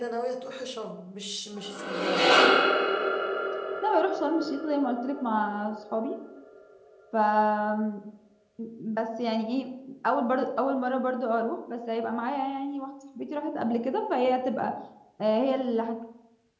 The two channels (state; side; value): identical; both; correlation 1.00